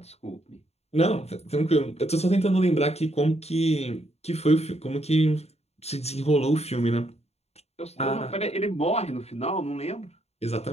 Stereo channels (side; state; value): right; late; 0.31 ms